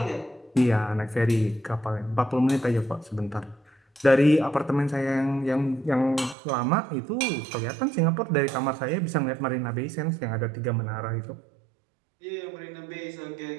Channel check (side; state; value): left; drops out; at 6.4 s